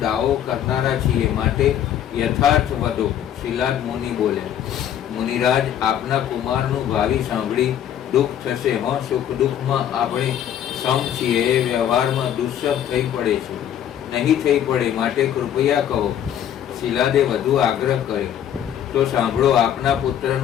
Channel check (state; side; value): quieter; right; 10.2 dB